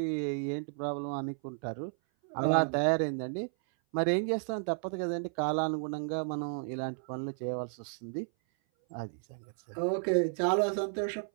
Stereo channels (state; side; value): silent; left; 56 dB below the other